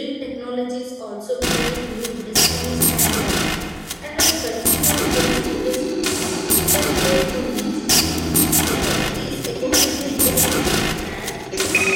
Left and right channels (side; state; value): both; identical; correlation 1.00